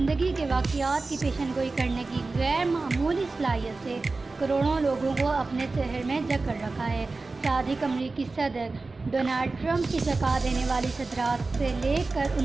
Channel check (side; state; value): left; quieter; 3.6 dB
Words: کے واقعات کی پیشن گوئی کرنے کی غیر معمولی صلاحیت سے کروڑوں لوگوں کو اپنے شہر میں جکڑ رکھا ہے۔ صادق امریکی صدر ڈونلڈ ٹرمپ کی چونکا دینے والی صدارت سے لے کر